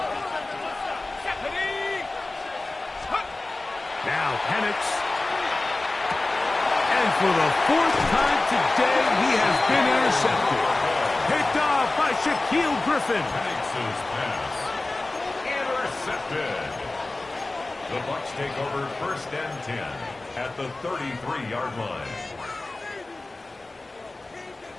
Now Penix. And for the 4th time today, he has been intercepted. Picked off by Shaquille Griffin. Penix's pass. Intercepted. The Bucs take over 1st and 10 at the 33-yard line.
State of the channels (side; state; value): right; quieter; 3.0 dB